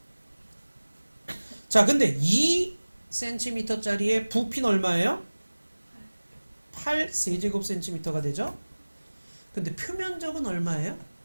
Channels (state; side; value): inverted; both; correlation -1.00